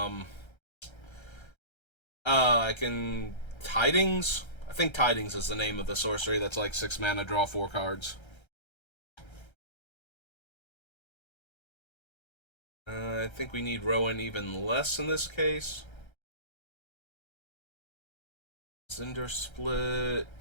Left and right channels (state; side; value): late; right; 1.3 ms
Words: Tidings? I think Tidings is the name of the sorcery that's like 6 mana, draw 4 cards. I think we need Rowan even less in this case. Cinder